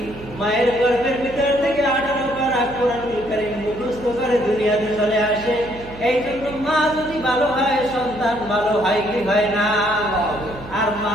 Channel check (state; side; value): noise; right; hum, 16 dB below the sound